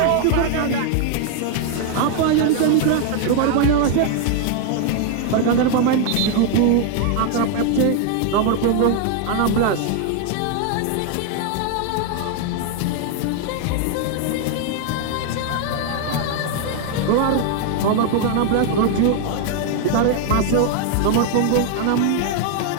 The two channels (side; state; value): both; different; correlation 0.00